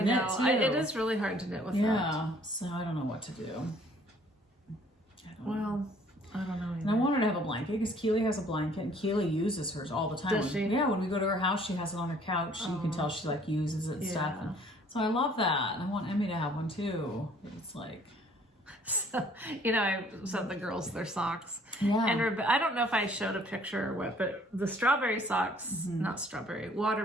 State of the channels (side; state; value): both; normal; correlation 0.58